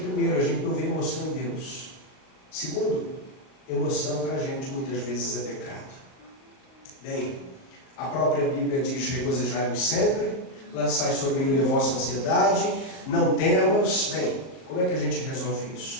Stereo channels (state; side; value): late; right; 38 ms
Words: a gente não vê emoção em Deus. Segundo, emoção para a gente muitas vezes é pecado. Bem, a própria Bíblia diz: regozijai-vos sempre, lançai sobre ele a vossa ansiedade, não temos. Bem, como é que a gente resolve